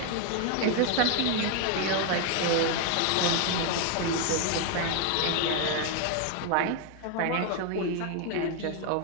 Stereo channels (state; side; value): different; both; correlation 0.01